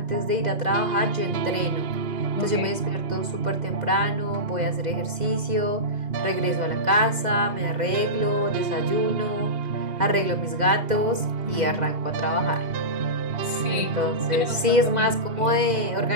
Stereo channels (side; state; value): left; late; 2.0 ms